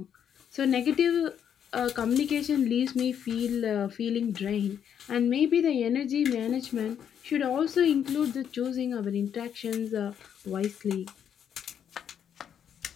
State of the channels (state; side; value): quieter; right; 8.7 dB